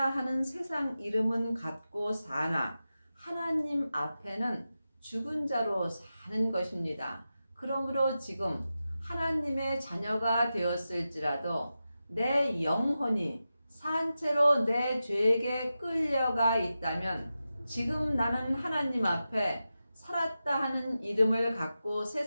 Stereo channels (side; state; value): both; inverted; correlation -0.92